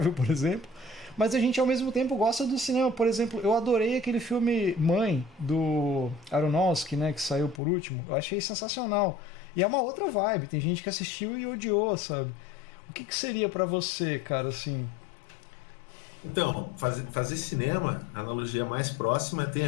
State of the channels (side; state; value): right; drops out; at 7.6 s